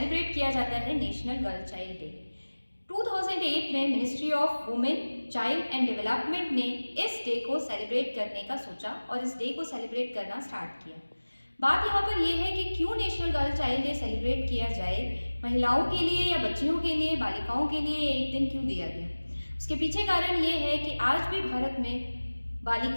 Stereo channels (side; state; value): both; inverted; correlation -1.00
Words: किया जाता है नेशनल गर्ल चाइल्ड डे। 2008 में ministry of women child and development ने इस डे को सेलिब्रेट करने का सोचा और इस डे को सेलिब्रेट करना स्टार्ट किया। बात यहाँ पर यह है कि क्यों national girl child day celebrate किया जाए, महिलाओं के लिए या बच्चियों के लिए, बालिकाओं के लिए एक दिन क्यों दिया गया। उसके पीछे कारण ये है कि आज भी भारत में